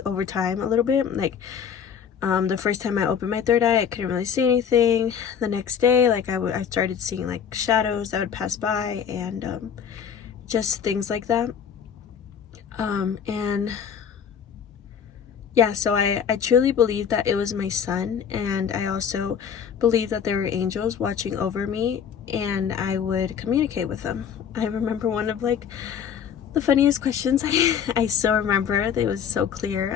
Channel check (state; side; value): quieter; right; 7.7 dB